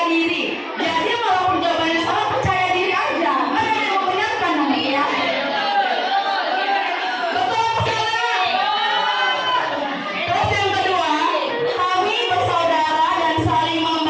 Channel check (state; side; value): identical; both; correlation 1.00